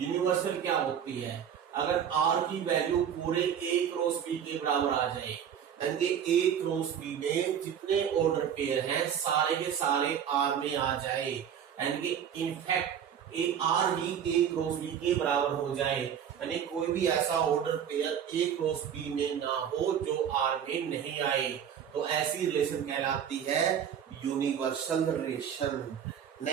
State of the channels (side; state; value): left; quieter; 8.6 dB